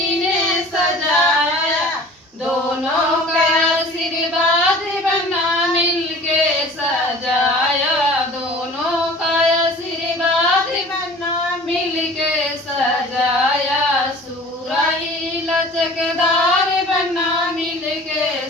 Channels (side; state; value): both; normal; correlation 0.44